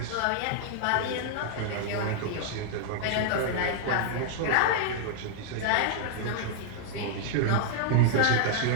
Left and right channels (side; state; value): both; different; correlation -0.01